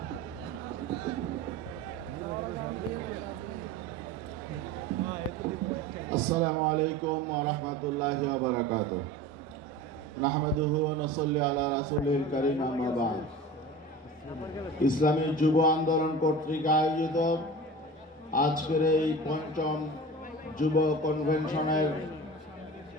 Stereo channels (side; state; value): both; normal; correlation 0.35